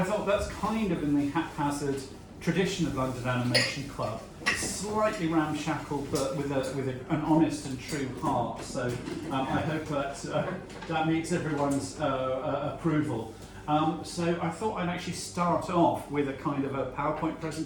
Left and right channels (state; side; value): identical; both; correlation 1.00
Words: thought that's kind of in the haphazard tradition of London Animation Club, slightly ramshackle, but with an honest and true heart. So I hope that meets everyone's approval. So I thought I'd actually start off with a kind of a PowerPoint